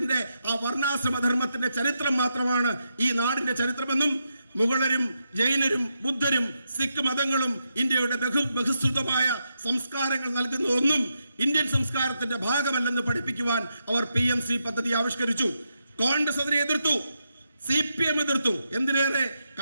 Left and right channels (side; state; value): both; inverted; correlation -0.84